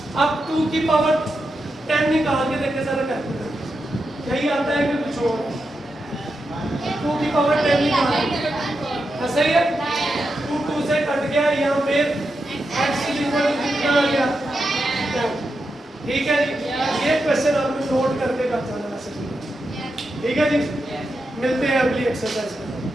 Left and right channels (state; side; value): normal; both; correlation 0.87